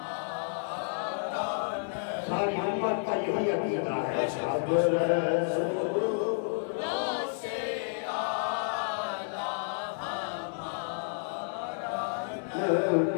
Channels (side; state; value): right; silent; 57 dB below the other